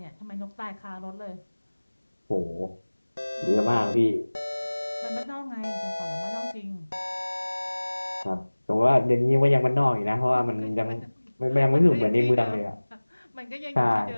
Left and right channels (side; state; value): both; inverted; correlation -1.00